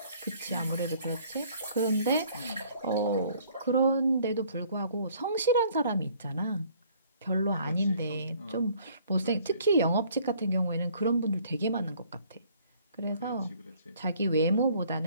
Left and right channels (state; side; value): inverted; both; correlation -0.58